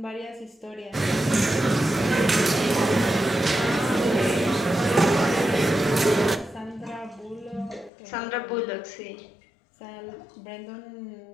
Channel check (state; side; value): drops out; right; at 7.9 s